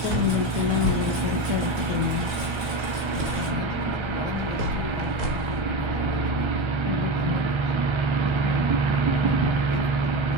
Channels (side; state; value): left; late; 1.2 ms